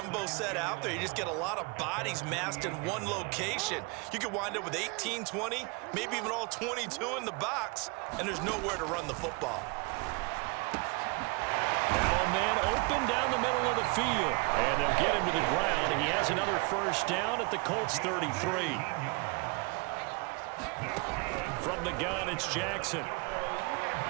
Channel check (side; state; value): left; quieter; 30.1 dB